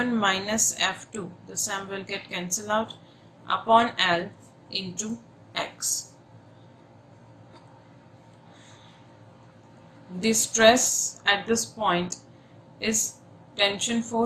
this M will get cancelled out, upon L into X. The stress at this point is tension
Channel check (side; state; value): both; identical; correlation 1.00